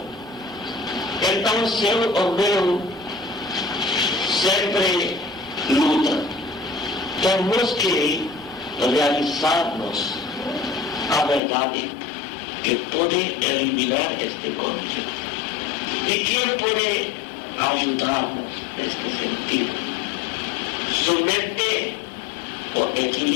Então, seu ou meu sempre luta. Temos que realizarmos a verdade que pode eliminar este conflito. E quem pode ajudar-nos neste sentido? Somente o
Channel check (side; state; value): right; drops out; at 11.4 s